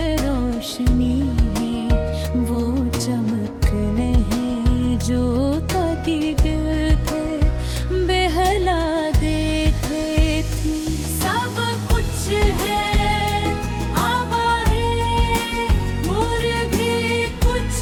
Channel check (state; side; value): identical; both; correlation 1.00